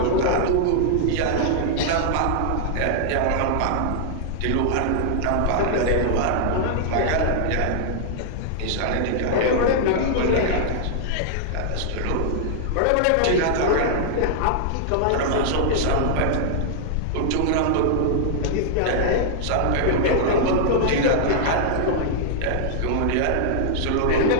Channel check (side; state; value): both; different; correlation -0.01